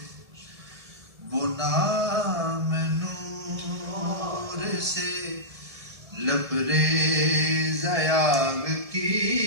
وہ نام نور سے لبریز یاغ کی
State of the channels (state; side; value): late; left; 1.7 ms